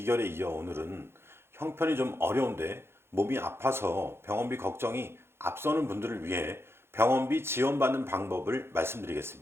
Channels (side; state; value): left; late; 0.12 ms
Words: 이어 오늘은 형편이 좀 어려운데 몸이 아파서 병원비 걱정이 앞서는 분들을 위해 병원비 지원받는 방법을